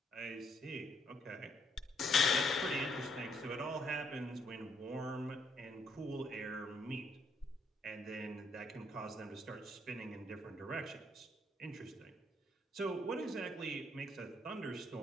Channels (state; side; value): normal; both; correlation 0.72